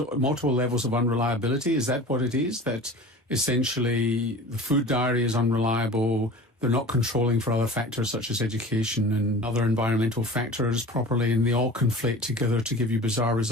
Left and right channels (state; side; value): normal; both; correlation 0.38